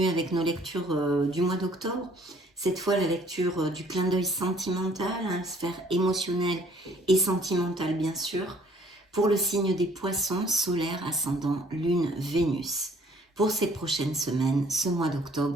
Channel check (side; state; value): both; normal; correlation 0.58